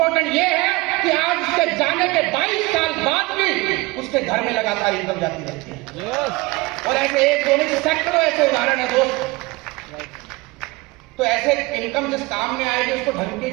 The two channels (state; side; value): quieter; left; 23.1 dB